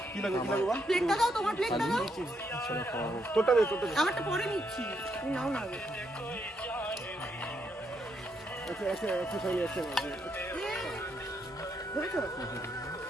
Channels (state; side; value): normal; both; correlation 0.78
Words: কি লাগে বাবা? প্লেটটা দাও, তোমার প্লেটটা দাও। তোরটা দে। আমারটা পরে নিচ্ছি, তুমি নাও না আগে। আচ্ছা সরি আছে। ধরেছো?